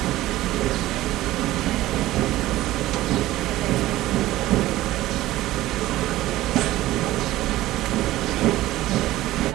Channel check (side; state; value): left; quieter; 16.0 dB